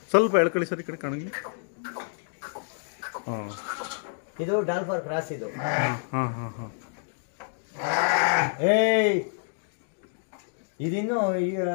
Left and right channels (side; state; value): right; silent; digital silence